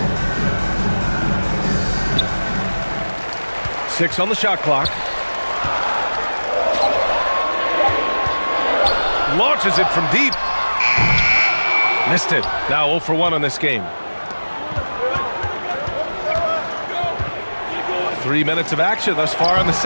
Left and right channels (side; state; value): both; inverted; correlation -1.00